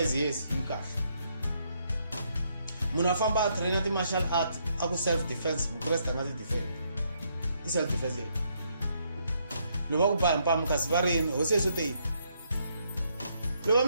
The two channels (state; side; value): inverted; both; correlation -0.74